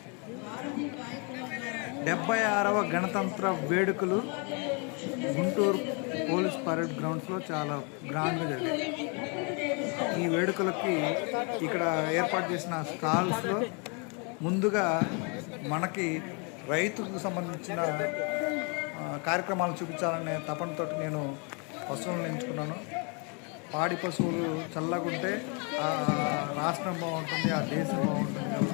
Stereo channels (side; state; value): right; quieter; 34.9 dB